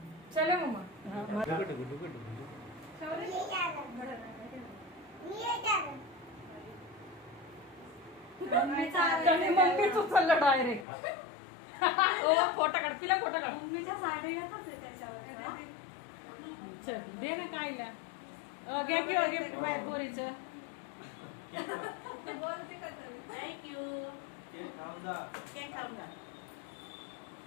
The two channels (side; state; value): right; drops out; at 10.9 s